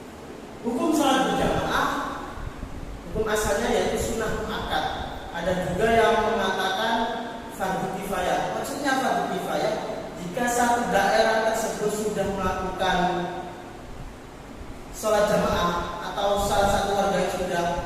Hukum sholat berjamaah, hukum asalnya yaitu sunnah muakkad. Ada juga yang mengatakan fardu kifayah. Maksudnya fardu kifayah jika satu daerah tersebut sudah melakukan sholat jamaah atau salah satu warga yang sudah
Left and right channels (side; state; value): both; identical; correlation 1.00